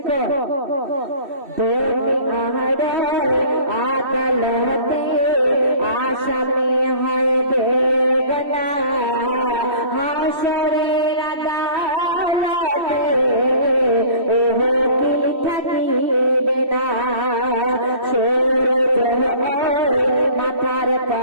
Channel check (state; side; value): late; left; 2.7 ms